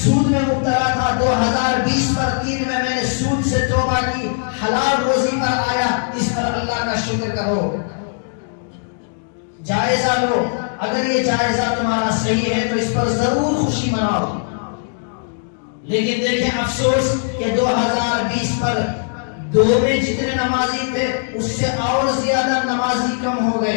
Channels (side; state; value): right; silent; digital silence